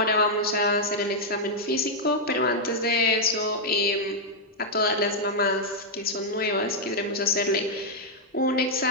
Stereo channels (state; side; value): normal; both; correlation -0.03